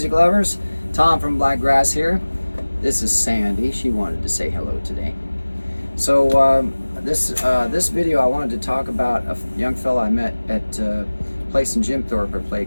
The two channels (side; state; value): both; inverted; correlation -1.00